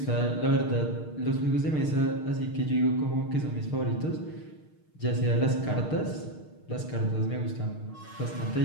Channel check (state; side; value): late; right; 6.5 ms